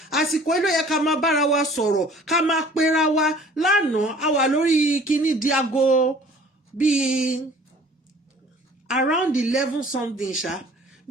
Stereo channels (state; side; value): normal; both; correlation 0.51